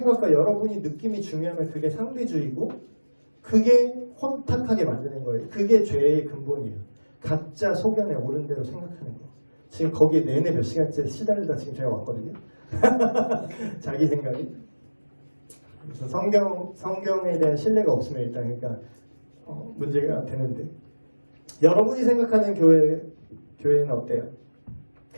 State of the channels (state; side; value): inverted; both; correlation -1.00